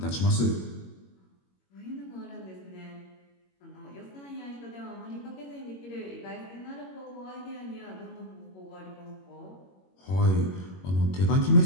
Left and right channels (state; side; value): late; right; 21 ms